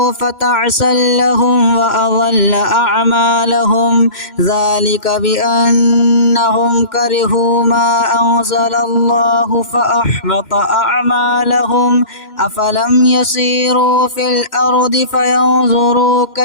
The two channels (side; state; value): right; late; 3.0 ms